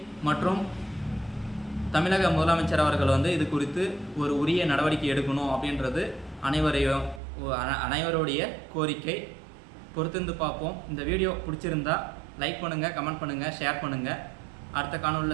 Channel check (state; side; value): drops out; left; at 7.2 s